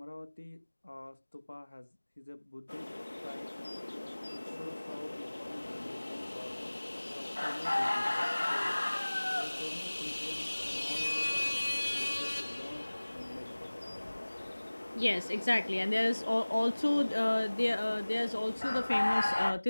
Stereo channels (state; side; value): inverted; both; correlation -1.00